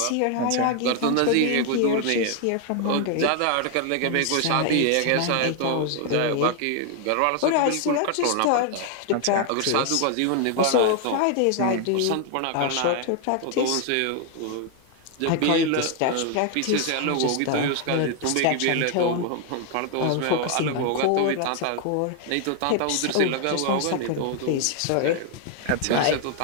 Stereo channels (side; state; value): both; different; correlation 0.00